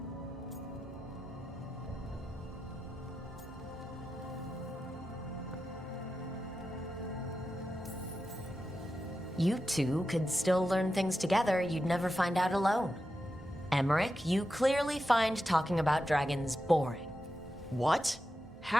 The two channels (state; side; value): normal; both; correlation 0.90